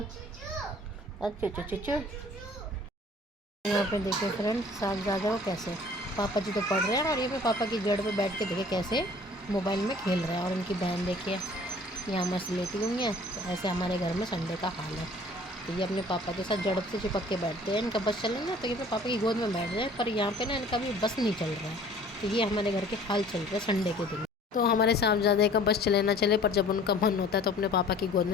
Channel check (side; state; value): both; normal; correlation 0.51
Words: और चूचू चूचू। यहाँ पे देखिए फ्रेंड साहबजादा को कैसे पापा जी तो पढ़ रहे हैं और ये पे पापा की जड़ पे बैठ के देखिए कैसे मोबाइल में खेल रहे हैं। और उनकी बहन देखिए यहाँ मस्त लेटी हुई है। तो ऐसे हमारे घर में संडे का हाल है। तो ये अपने पापा के साथ जड़ से चिपक के बैठते हैं। इनका बस चले ना तो ये पापा की गोद में बैठ जाए, पर यहाँ पे ना इनका भी बस नहीं चल रहा है। तो ये हमारे घर के हाल चल रहे हैं संडे के दिन। तो हमारे साहबजादे का बस चले ना चले, पर जब उनका मन होता है तो अपने पापा की गोद